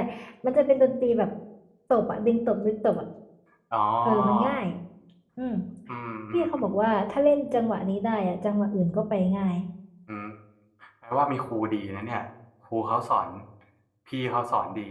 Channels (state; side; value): identical; both; correlation 1.00